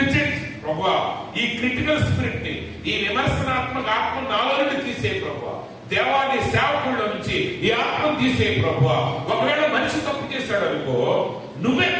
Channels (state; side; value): identical; both; correlation 1.00